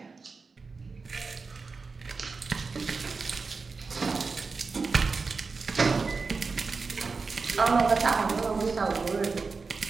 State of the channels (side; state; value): left; quieter; 4.4 dB